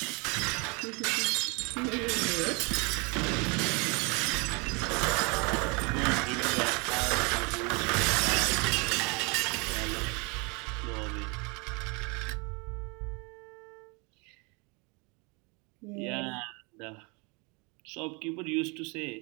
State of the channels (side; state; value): left; quieter; 30.4 dB